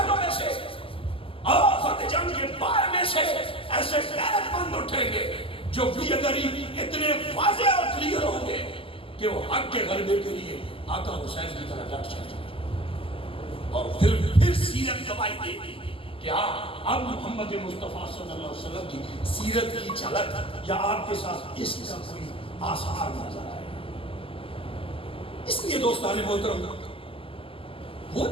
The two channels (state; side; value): late; right; 0.26 ms